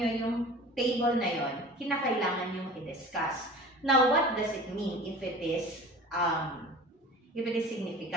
yung table na yon, kinakailangan nyo i-discuss. Now, what does it mean if it is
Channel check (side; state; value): both; normal; correlation 0.40